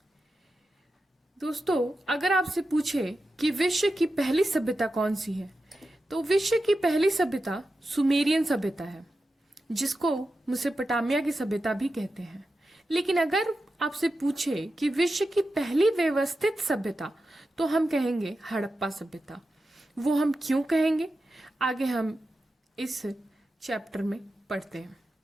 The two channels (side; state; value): both; normal; correlation 0.91